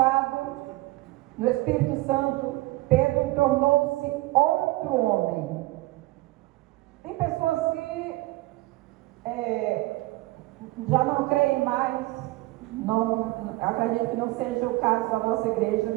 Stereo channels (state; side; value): quieter; left; 20.0 dB